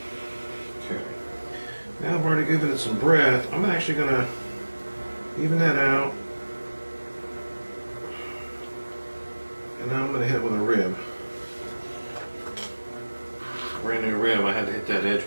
Okay. Now I've already given it some breath. I'm actually going to even that out. And now I'm going to hit it with a rib. Brand new rib. I had to hit that edge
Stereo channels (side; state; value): both; inverted; correlation -1.00